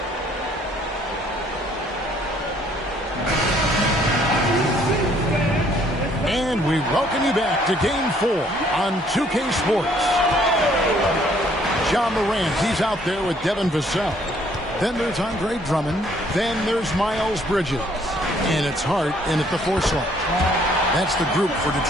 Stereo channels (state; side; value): normal; both; correlation 0.63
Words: And we welcome you back to Game 4 on 2K Sports. Ja Morant, he's out there with Devin Vassell. Then there's Andre Drummond. Then there's Miles Bridges. And it's Hart in at the 4 slot. That's the group for